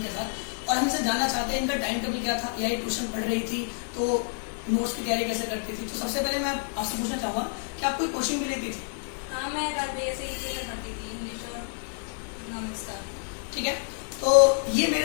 साथ। और हमसे जानना चाहते हैं इनका टाइम टेबल क्या था, या ट्यूशन पढ़ रही थी तो नोट्स की तैयारी कैसे करती थी। तो सबसे पहले मैं आपसे पूछना चाहूंगा कि आप कोई कोचिंग भी लेती थी? हाँ, मैं राज भैया से ही ट्यूशन पढ़ती थी, इंग्लिश और इकोनॉमिक्स का। ठीक है, तो ये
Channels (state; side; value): silent; right; 59 dB below the other